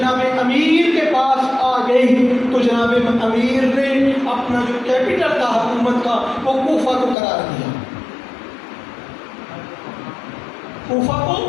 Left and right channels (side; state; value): right; drops out; at 7.2 s